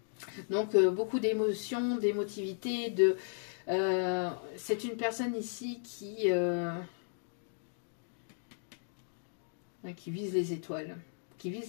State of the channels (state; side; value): silent; right; digital silence